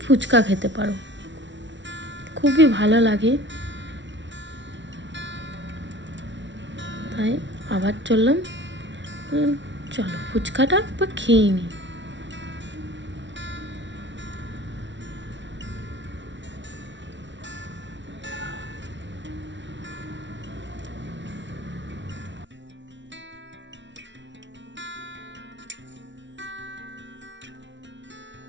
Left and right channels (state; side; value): late; left; 0.54 ms